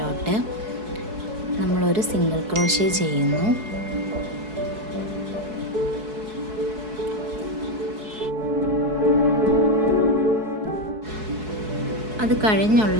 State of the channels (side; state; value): left; late; 4.7 ms